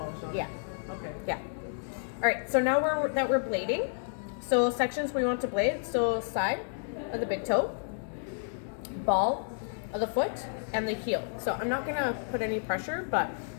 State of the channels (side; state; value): right; silent; digital silence